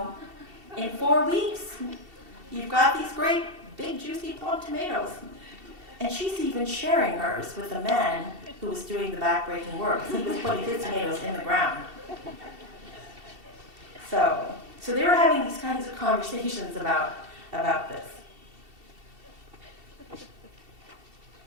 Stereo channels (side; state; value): left; late; 2.7 ms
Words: in 4 weeks, you've got these great, big, juicy, plump tomatoes. And she's even sharing hers with a man who was doing the backbreaking work. He was putting his tomatoes in the ground. So they were having these kinds of conversations about this.